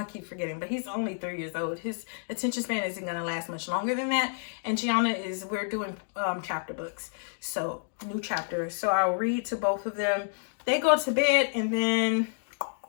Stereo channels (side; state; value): right; silent; digital silence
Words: keep forgetting, but he's only 3 years old. His attention span isn't going to last much longer than that. And Gianna we're doing chapter books. So new chapters. So I'll read to both of them. They go to bed, and then